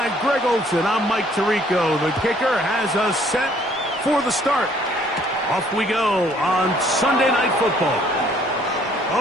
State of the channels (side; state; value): both; normal; correlation 0.61